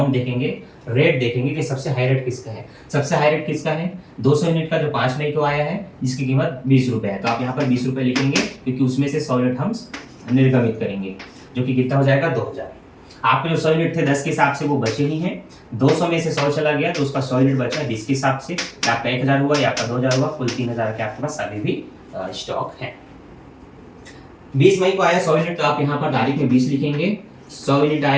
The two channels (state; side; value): identical; both; correlation 1.00